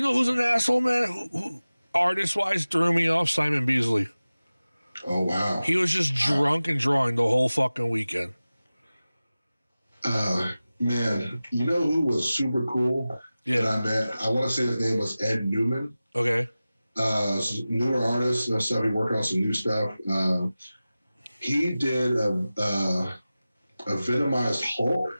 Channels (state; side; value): inverted; both; correlation -0.96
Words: asshole, man? Who artist wise threw me off? Simon Beasley. Oh wow. He was just drunk and drawing the whole fucking weekend. Man, you know who was super cool that I met? I want to say his name was Ed Newman. Okay. Newer artist and stuff. He working on some new stuff. He did a Venomized Hulk